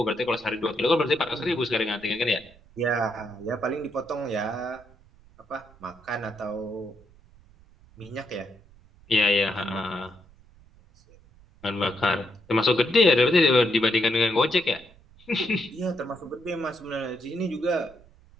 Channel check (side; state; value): right; noise; rumble, 26 dB below the sound